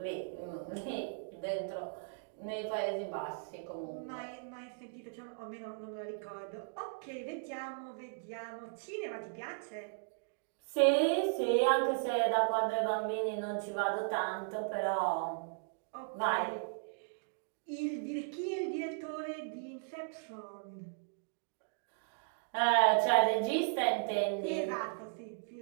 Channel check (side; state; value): left; silent; digital silence